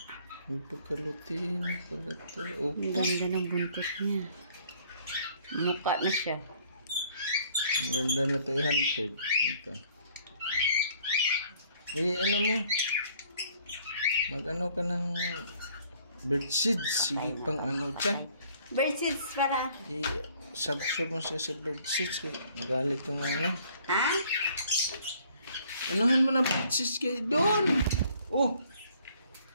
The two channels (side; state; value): both; inverted; correlation -0.60